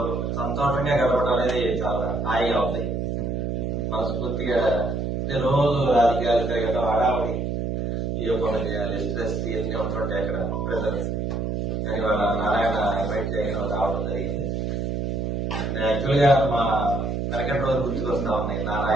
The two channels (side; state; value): right; noise; hum, 1 dB below the sound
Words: సంతోషంగా గడపడం అనేది చాలా హాయిగా ఉంది. మనస్ఫూర్తిగా అంటే రోజు రాజకీయాలు తిరగడం, హడావుడి, ఏ పనులు చేయాలి, స్ట్రెస్ ఇవన్నీ ఉంటుంటాయి అక్కడ ప్రజలు. కానీ వాళ్ళ నారాయణ ఇన్వైట్ చేయడం రావడం జరిగింది. యాక్చువల్గా మా వెనకటి రోజు గుర్తుకొస్తా ఉన్నాయి.